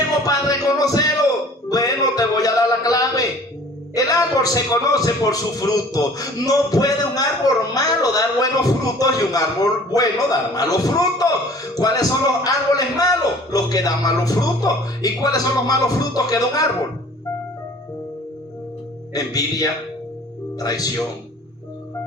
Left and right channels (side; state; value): both; normal; correlation 0.49